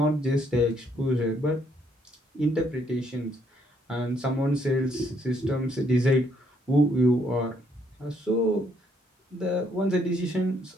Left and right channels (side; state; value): both; normal; correlation 0.70